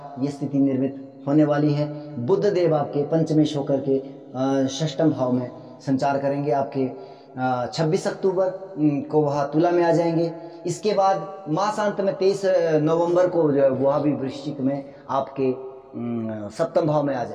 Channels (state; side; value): identical; both; correlation 1.00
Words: ये स्थिति निर्मित होने वाली है। बुध देव आपके पंचमेश होकर के षष्ठम भाव में संचार करेंगे, आपके 26 अक्टूबर को वह तुला में आ जाएंगे। इसके बाद मासांत में 23 नवंबर को जो है वह भी वृश्चिक में आपके सप्तम भाव में आ